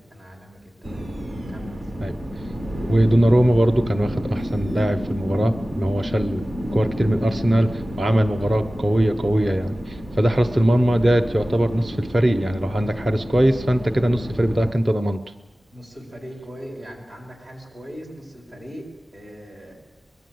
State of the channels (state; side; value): normal; both; correlation 0.97